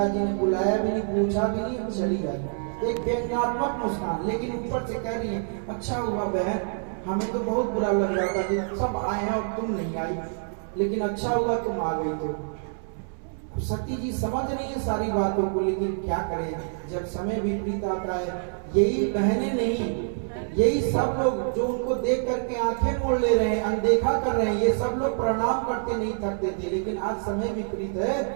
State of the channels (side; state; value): left; silent; 61 dB below the other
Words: ने बुलाया भी नहीं, पूछा भी नहीं, चली गई। एक व्यंग्यात्मक मुस्कान, लेकिन ऊपर से कह रही है अच्छा हुआ बहन, हमें तो बहुत बुरा लग रहा था कि सब आए हैं और तुम नहीं आई, लेकिन अच्छा हुआ तुम आ गई। तो सती जी समझ रही है सारी बातों को, लेकिन क्या करें जब समय विपरीत आता है। यही बहनें नहीं, यही सब लोग जो उनको देख करके आंखें मोड़ ले रहे हैं, अनदेखा कर रहे हैं, ये सब लोग प्रणाम करते नहीं थकते थे। लेकिन आज समय विपरीत है,